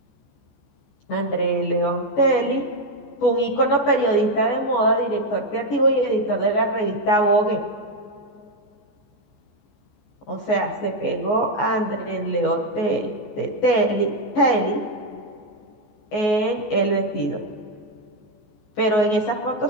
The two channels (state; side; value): late; right; 14 ms